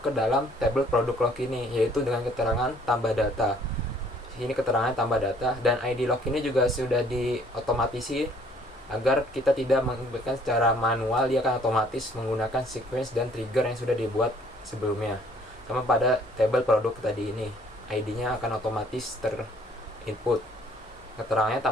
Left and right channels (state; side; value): normal; both; correlation 0.60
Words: dalam tabel produk log ini, yaitu dengan keterangan tambah data. Ini keterangan tambah data, dan ID log ini juga sudah diotomatisi agar kita tidak menginputkan secara manual. Dia akan otomatis menggunakan sequence dan trigger yang sudah dibuat sebelumnya. Sama pada tabel produk tadi ini, ID-nya akan otomatis terinput. Keterangannya